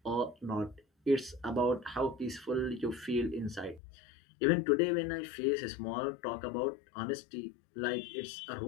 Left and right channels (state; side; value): drops out; right; at 3.8 s